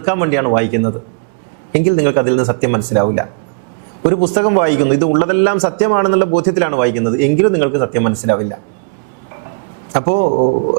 വേണ്ടിയാണ് വായിക്കുന്നത് എങ്കിൽ നിങ്ങൾക്ക് അതിൽ നിന്ന് സത്യം മനസ്സിലാവില്ല. ഒരു പുസ്തകം വായിക്കുന്നു, ഇത് ഉള്ളതെല്ലാം സത്യമാണെന്നുള്ള ബോധ്യത്തിലാണ് വായിക്കുന്നത് എങ്കിലും നിങ്ങൾക്ക് സത്യം മനസ്സിലാവില്ല. അപ്പോൾ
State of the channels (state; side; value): quieter; left; 35.5 dB